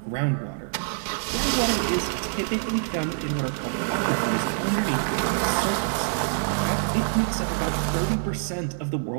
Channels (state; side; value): silent; left; digital silence